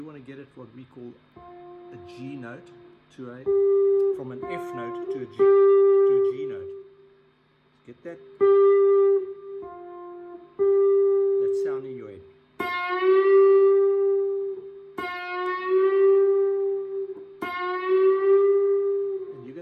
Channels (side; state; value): both; identical; correlation 1.00